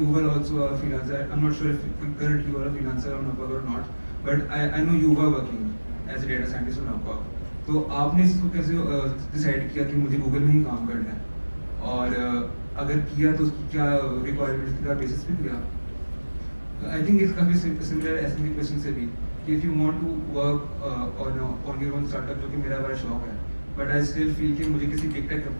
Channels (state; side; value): inverted; both; correlation -1.00